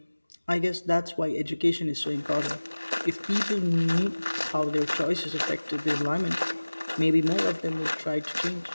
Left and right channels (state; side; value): inverted; both; correlation -1.00